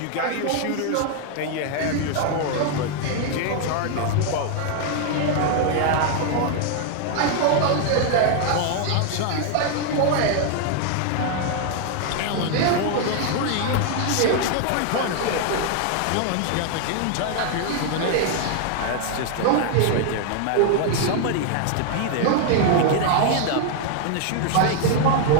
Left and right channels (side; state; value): both; different; correlation 0.00